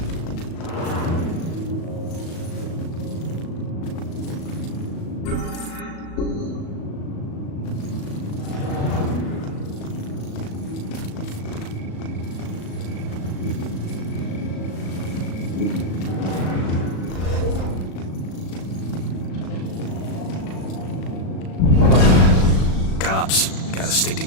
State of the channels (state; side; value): late; right; 37 ms